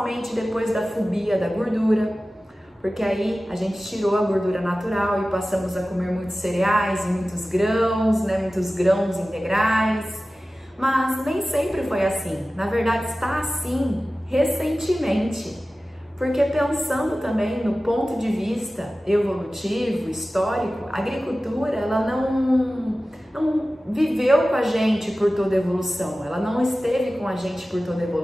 depois da fobia da gordura, porque aí a gente tirou a gordura natural e passamos a comer muitos cereais e muitos grãos integrais, mas nem sempre foi assim. Na verdade está assim recentemente, porque pensando também no ponto de vista evolutivo, histórico, a agricultura ela não viveu com a gente por toda a evolução, ela não esteve com a gente por toda a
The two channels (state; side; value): normal; both; correlation 0.96